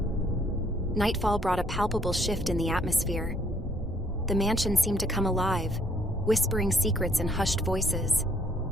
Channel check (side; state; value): both; normal; correlation 0.65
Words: Nightfall brought a palpable shift in the atmosphere. The mansion seemed to come alive, whispering secrets in hushed voices.